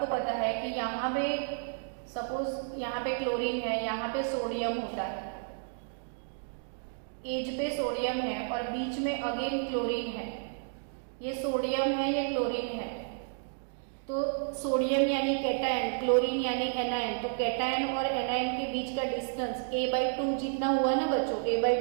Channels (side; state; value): left; silent; digital silence